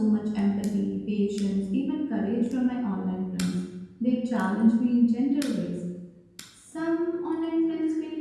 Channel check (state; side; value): identical; both; correlation 1.00